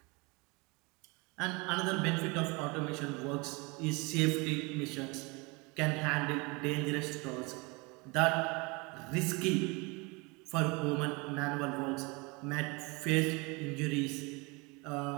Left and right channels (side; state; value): left; quieter; 27.5 dB